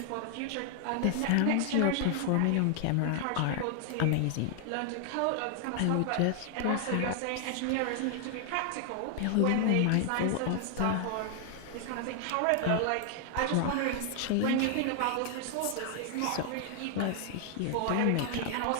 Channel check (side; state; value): both; different; correlation 0.00